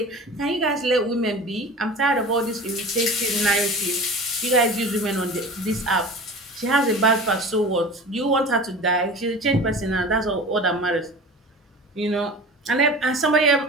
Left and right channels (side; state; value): both; normal; correlation 0.36